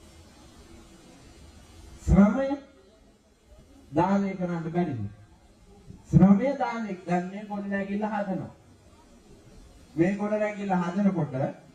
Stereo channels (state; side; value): identical; both; correlation 1.00